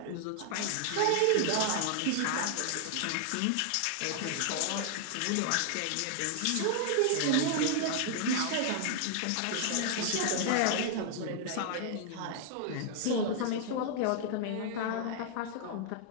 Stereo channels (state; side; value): different; both; correlation 0.00